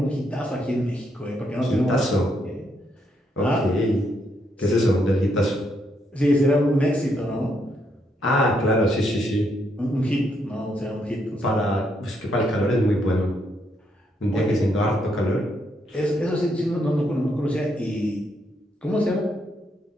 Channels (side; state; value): both; normal; correlation 0.76